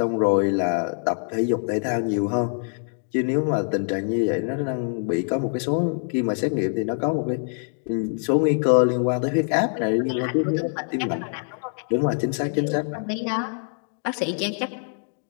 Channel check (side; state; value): right; silent; 62 dB below the other